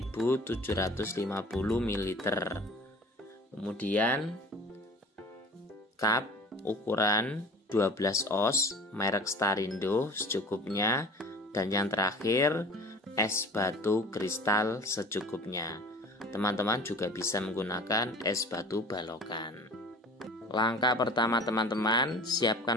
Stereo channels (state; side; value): normal; both; correlation 0.42